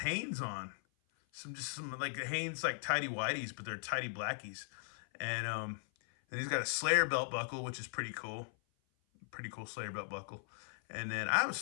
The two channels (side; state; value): right; silent; 52 dB below the other